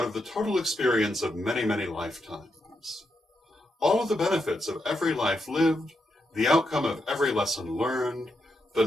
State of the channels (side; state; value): both; normal; correlation 0.83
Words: of the total experience of many, many lifetimes. All of the benefits of every life lived, the outcome of every lesson learned, the